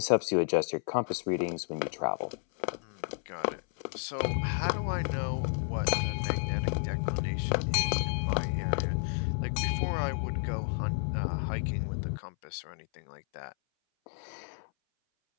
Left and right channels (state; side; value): silent; right; 57 dB below the other